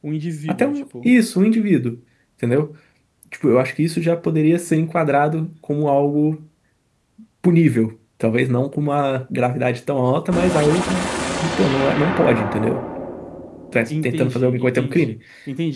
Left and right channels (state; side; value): identical; both; correlation 1.00